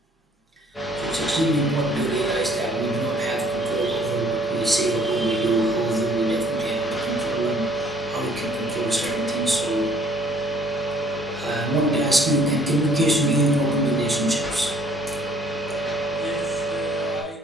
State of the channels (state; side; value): normal; both; correlation 0.59